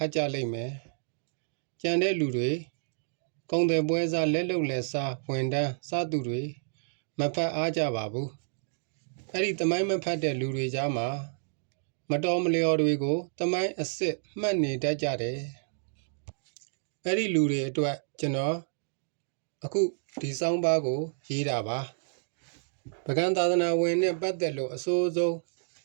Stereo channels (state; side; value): silent; left; digital silence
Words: တ်ကြလိမ့်မယ်ကြံတဲ့လူတွေကုံတယ်ပွဲစားလက်လုံလက်စားဝန်တန်းစားသူတွေမဖတ်အားကြပါဘူးအဲ့ဒီသမိုင်းမဖတ်တဲ့လူတွေကြားမှာမတော်မလျော်တွေကိုသမိုင်းအစ်စ်မှတ်နေတတ်ကြတယ်အဲ့ဒီလူတွေအတွက်ကျွန်တော်အခုဒီစောင်းပါးကိုရေးတာပါပကံသာသနာဝင်နဲ့ပတ်သက်လို့အစိုးဆုံး